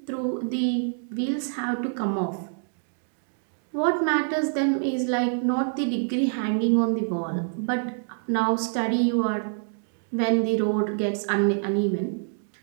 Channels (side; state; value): left; silent; digital silence